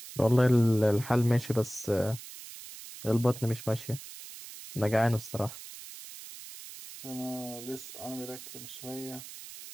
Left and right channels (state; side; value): noise; right; hiss, 14 dB below the sound